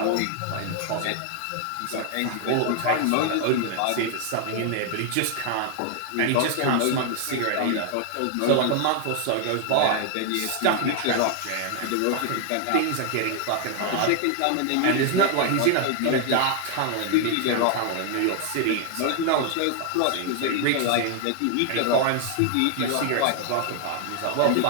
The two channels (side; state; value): both; different; correlation 0.00